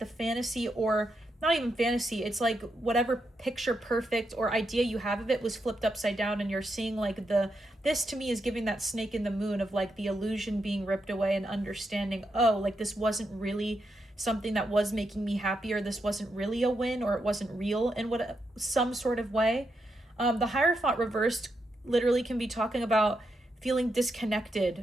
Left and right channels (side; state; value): both; normal; correlation 0.83